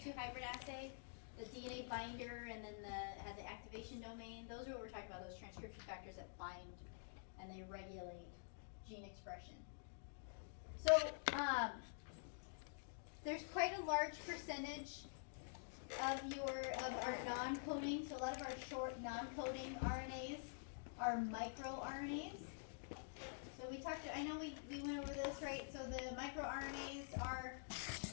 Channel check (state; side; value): silent; right; digital silence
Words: 2 hybrid assay? The DNA binder and then had the activation domain? Those are what we're talking about, those transcription factors that bind and they regulate gene expression. So there's quite a large percentage of our non-coding. So a lot of our short non-coding RNAs are microRNAs. So we talked, I know we went over this, right? So the microRNAs are